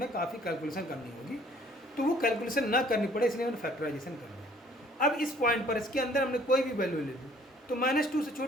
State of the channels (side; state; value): both; normal; correlation 0.57